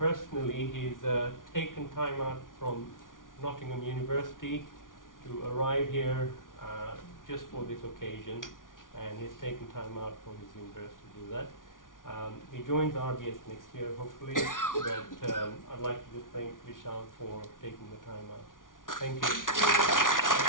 He's taken time out from Nottingham University to arrive here just for this occasion, and he's taken time out from his university to do that. He joins RBS next year, hopefully, but I'd like to just thank Vishal for taking the time out. Thank you.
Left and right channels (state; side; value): late; right; 0.89 ms